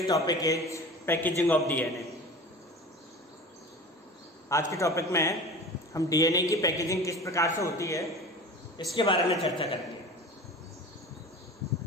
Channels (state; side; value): normal; both; correlation 0.36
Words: topic is packaging of DNA. आज के टॉपिक में हम DNA की पैकेजिंग किस प्रकार से होती है इसके बारे में चर्चा करेंगे।